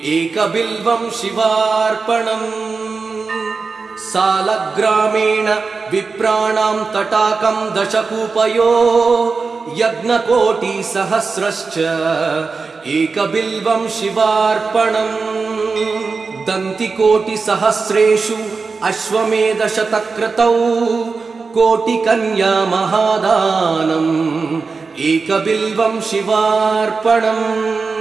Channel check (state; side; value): quieter; left; 4.5 dB